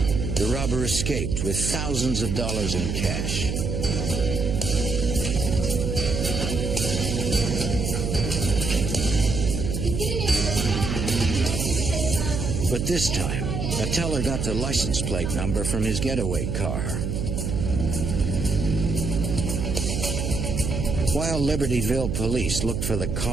The robber escaped with thousands of dollars in cash. But this time, a teller got the license plate number from his getaway car. While Libertyville police looked for the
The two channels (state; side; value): noise; right; hum, 2 dB below the sound